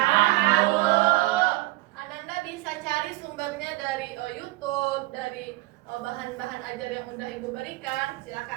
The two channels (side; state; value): left; quieter; 20.0 dB